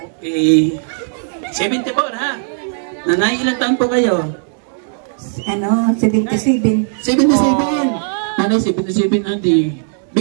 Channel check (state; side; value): silent; left; 66 dB below the other